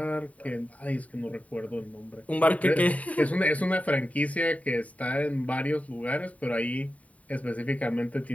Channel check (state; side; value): late; right; 0.069 ms